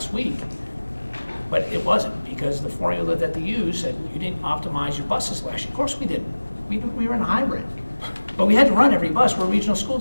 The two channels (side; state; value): both; inverted; correlation -1.00